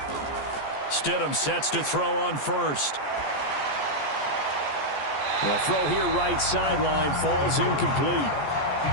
Stidham sets to throw on first. The throw here right sideline falls incomplete.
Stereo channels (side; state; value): right; late; 14 ms